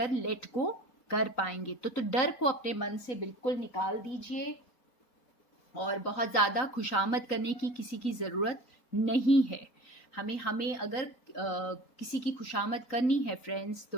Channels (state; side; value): late; right; 3.9 ms